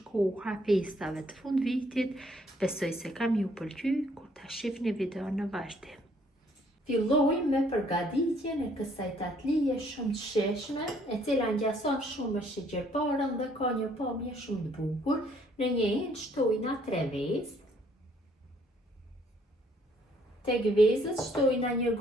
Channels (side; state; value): both; normal; correlation 0.64